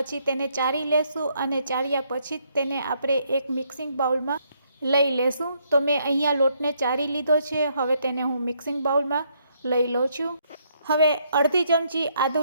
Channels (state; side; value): inverted; both; correlation -0.72